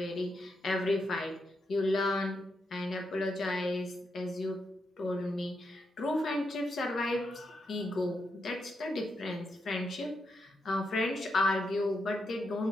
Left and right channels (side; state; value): both; normal; correlation 0.83